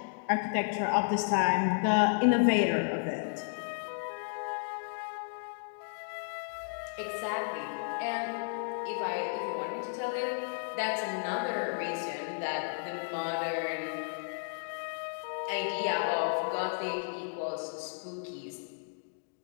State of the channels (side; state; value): right; silent; digital silence